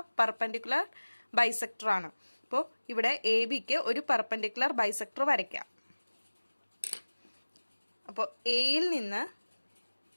പെർപെൻഡിക്കുലർ ബൈസെക്ടർ ആണ്. അപ്പോൾ ഇവിടെ എ ബിക്ക് ഒരു പെർപെൻഡിക്കുലർ ബൈസെക്ടർ വരയ്ക്കാം. അപ്പോൾ എയിൽ നിന്ന്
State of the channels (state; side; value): inverted; both; correlation -1.00